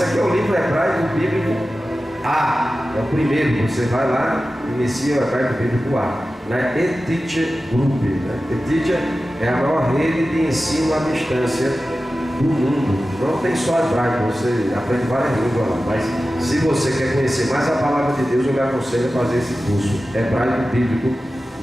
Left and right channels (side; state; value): both; normal; correlation 0.94